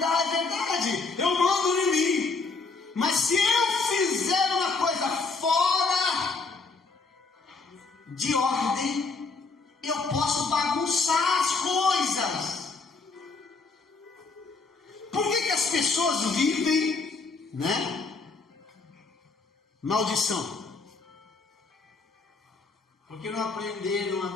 eu mando de mim. Mas se eu fizer uma coisa fora de ordem, eu posso bagunçar as coisas. Por que as pessoas vivem, né? Maldição. Porque não aprenderam a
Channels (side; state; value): right; quieter; 4.2 dB